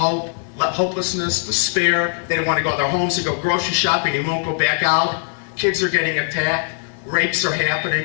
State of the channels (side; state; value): right; silent; 64 dB below the other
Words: despair. They don't want to go to their homes to go grocery shopping. They won't go back out. Kids are getting attacked. Rapes are